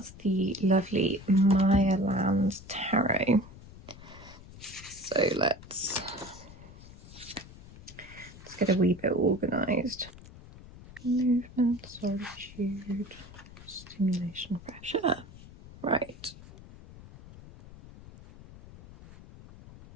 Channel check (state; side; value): noise; left; rumble, 18 dB below the sound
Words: the lovely Mayaland Tarot. So let's get a wee bit organised. Movement, solitude, stimulation, pressure. Right.